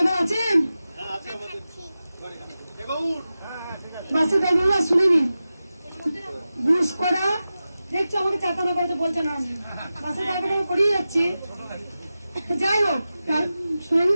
আছেন? বাসের ড্রাইভার শুনে নিন। ঘুষ করা দেখছো, আমাকে চাতানা করতে বলছে না, বাসের ড্রাইভার আমি করিয়ে যাচ্ছি। যাই হোক শুনে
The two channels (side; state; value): both; inverted; correlation -0.94